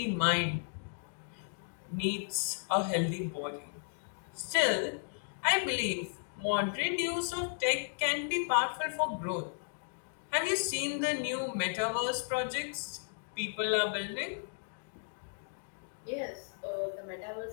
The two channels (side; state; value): right; silent; digital silence